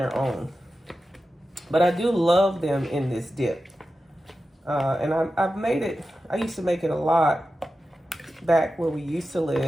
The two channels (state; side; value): normal; both; correlation 0.92